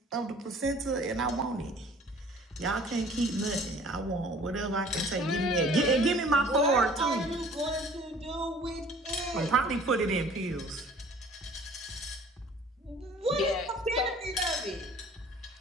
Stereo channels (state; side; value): normal; both; correlation 0.51